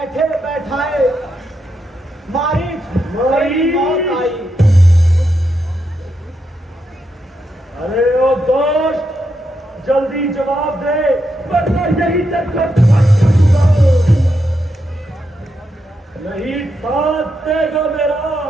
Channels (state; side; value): normal; both; correlation 0.83